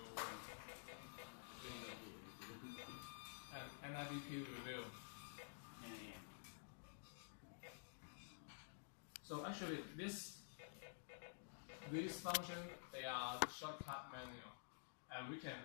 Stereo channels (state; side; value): silent; right; digital silence